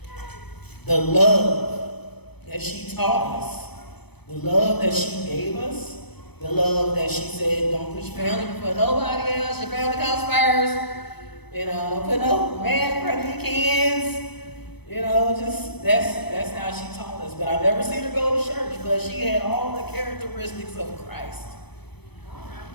the love that she taught us, the love that she gave us, the love that she said, don't put your family before nobody else, your family comes first. You know, don't put no man in front of your kids. You know, just that's how she taught us. But I never seen her go to church, but she had all the characteristics of Christ.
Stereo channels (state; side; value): late; right; 0.98 ms